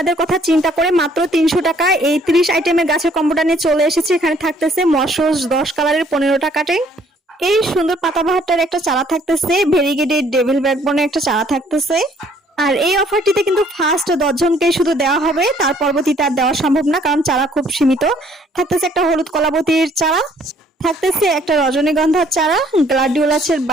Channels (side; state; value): both; normal; correlation 0.62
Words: কথা চিন্তা করে মাত্র 300 টাকা এই 30 আইটেমের গাছের কম্বোটা নিয়ে চলে এসেছি। এখানে থাকতেছে মশস 10 কালারের 15টা কাটিং, এই সুন্দর পাতাবাহারটার একটা চারা থাকতেছে, ভেরিগেটেড ডেভিল ব্যাকবোনের একটা চারা থাকতেছে। আর এই অফারটিতে কিন্তু ফার্স্ট 10 জনকে শুধু দেওয়া হবে, তার পরবর্তীতে আর দেওয়া সম্ভব না কারণ চারা খুব সীমিত। থাকতেছে একটা হলুদ কলাবতীর চারা, থাকতেছে একটা রজনীগন্ধার চারা, গ্লাডিওলাসের